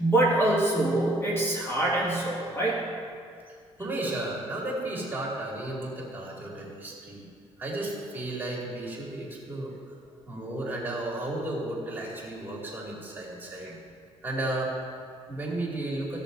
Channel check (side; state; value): both; normal; correlation 0.61